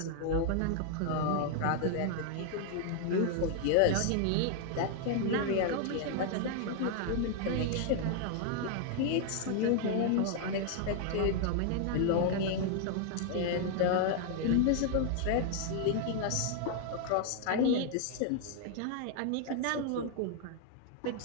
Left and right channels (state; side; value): different; both; correlation 0.00